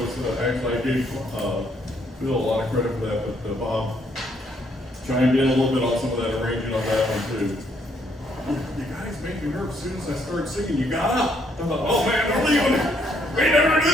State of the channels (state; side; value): normal; both; correlation 0.70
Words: actually I gave Bill a lot of credit for that, but Bob chimed in a little bit on some of that arranging on that one too. You guys make me nervous as soon as I started singing. You got up. I thought, oh man, they're leaving. We never do